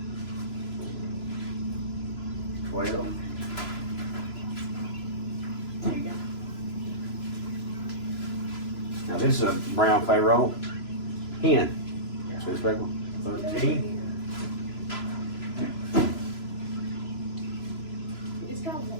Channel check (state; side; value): late; right; 3.0 ms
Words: 12. There you go. Now this is a brown Pharaoh hen. See the speckle? 13. It's got